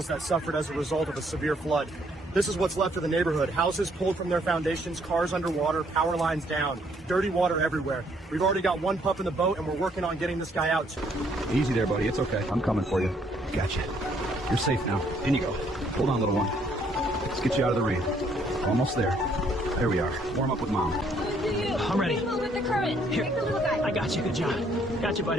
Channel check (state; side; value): normal; both; correlation 0.67